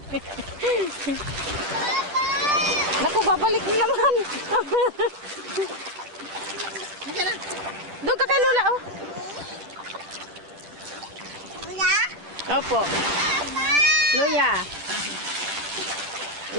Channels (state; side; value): late; left; 10 ms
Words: Naku, babalik na naman. Hindi ka na. Doon ka kay Lula, oh. Opo. Luya.